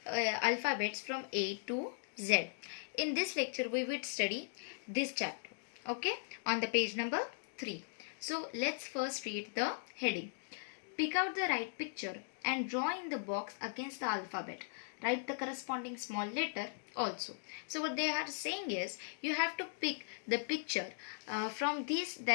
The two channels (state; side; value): silent; right; digital silence